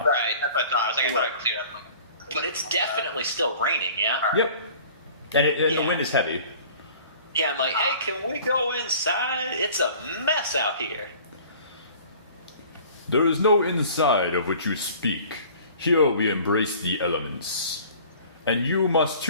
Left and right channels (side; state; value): both; inverted; correlation -0.48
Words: Right, that's what I thought. I was like, I thought it cleared up. But it's definitely still raining. Yeah. Yep. And the Yeah. wind is heavy. Yeah. I'm like, hey, can we go inside? It's a mess out here. There is no inside of which you speak. Here we embrace the elements. And you must